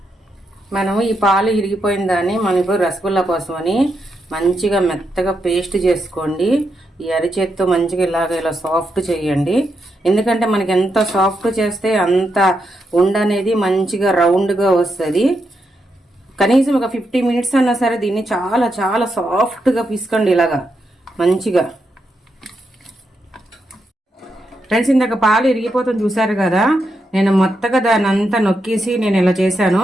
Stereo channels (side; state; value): both; normal; correlation 0.83